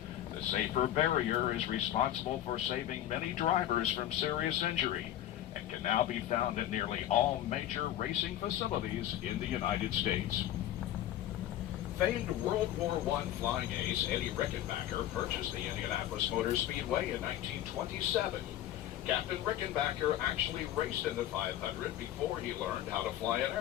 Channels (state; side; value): quieter; right; 12.5 dB